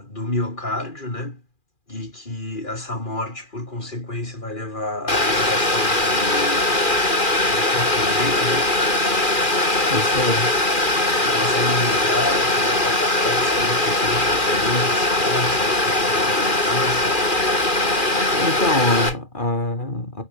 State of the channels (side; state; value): right; late; 2.4 ms